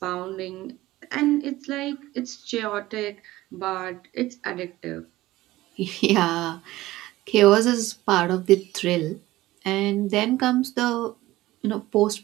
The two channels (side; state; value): left; quieter; 17.2 dB